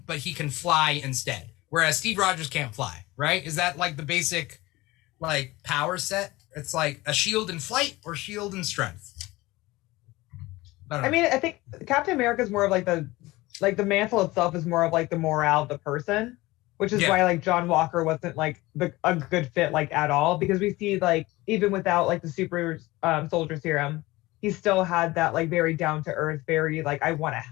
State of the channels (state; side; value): quieter; right; 20.0 dB